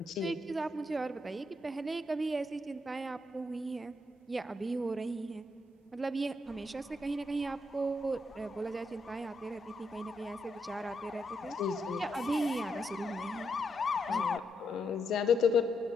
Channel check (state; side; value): normal; both; correlation 0.80